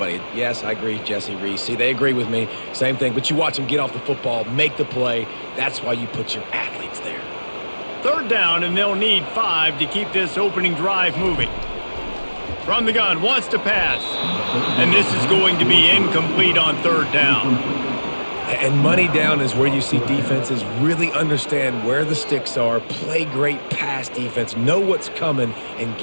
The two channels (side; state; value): both; inverted; correlation -1.00